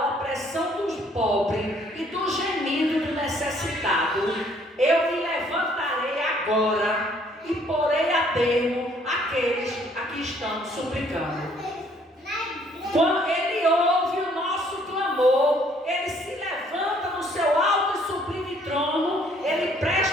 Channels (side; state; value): both; normal; correlation 0.63